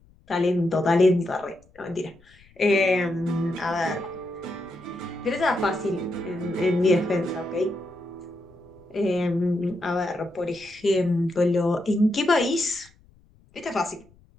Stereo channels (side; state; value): left; noise; rumble, 29 dB below the sound